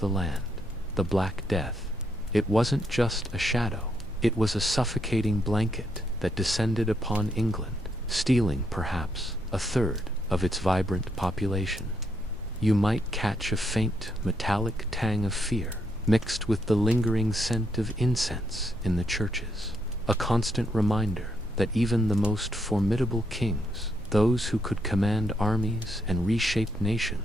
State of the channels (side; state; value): both; normal; correlation 0.77